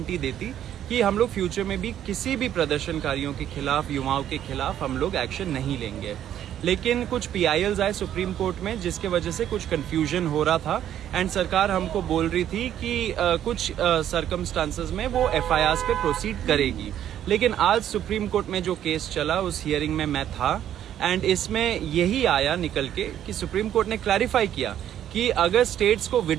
देती कि हम लोग फ्यूचर में भी किसी भी प्रदर्शनकारियों के खिलाफ, युवाओं के खिलाफ हम लोग एक्शन नहीं लेंगे। लेकिन कुछ पीआईएल्स आए सुप्रीम कोर्ट में, जिसके वजह से कुछ कंफ्यूजन हो रहा था एंड सरकार हमको बोल रही थी कि कुछ सर्कमस्टांसेस में वो एफआईआर्स पे प्रोसीड करेगी। लेकिन आज सुप्रीम कोर्ट में जो केस चला, उस हियरिंग में मैं था एंड इसमें यही आया निकल के कि सुप्रीम कोर्ट ने क्लैरिफाई किया कि अगर स्टेट्स को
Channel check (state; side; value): quieter; left; 10.8 dB